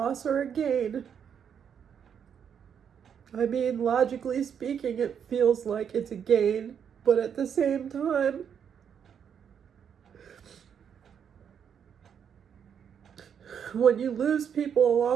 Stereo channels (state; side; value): quieter; left; 7.9 dB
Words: or a gain. I mean, logically speaking, it feels like it's a gain, but at the same time, when you lose people